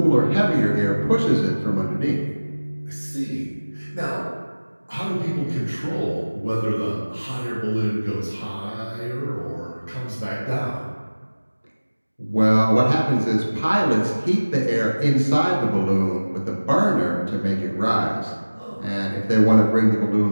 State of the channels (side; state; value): both; inverted; correlation -1.00